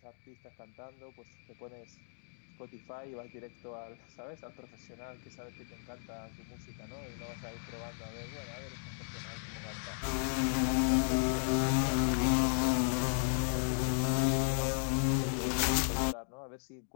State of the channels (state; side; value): silent; right; digital silence